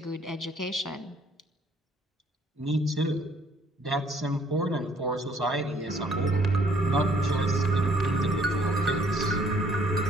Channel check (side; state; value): both; normal; correlation 0.63